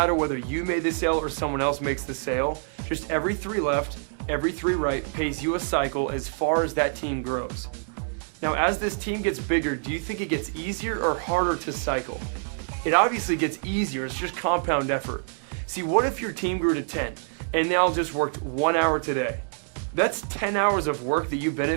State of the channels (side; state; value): left; silent; 61 dB below the other